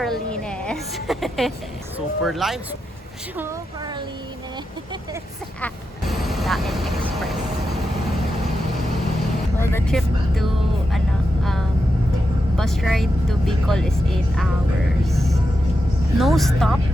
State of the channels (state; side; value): normal; both; correlation 0.88